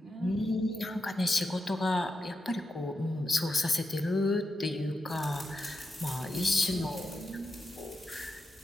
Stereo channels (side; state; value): both; normal; correlation 0.87